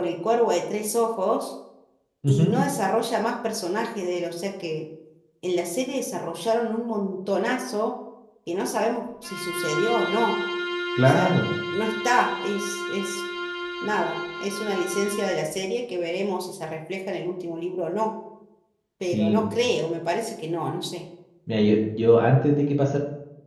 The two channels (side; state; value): both; identical; correlation 1.00